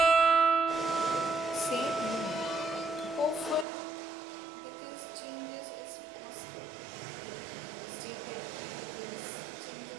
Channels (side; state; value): left; drops out; at 3.7 s